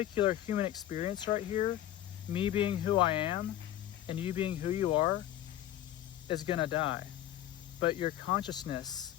human experience right here, me being who I am and you being who you are, is gonna die. But your consciousness,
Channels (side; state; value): right; quieter; 12.5 dB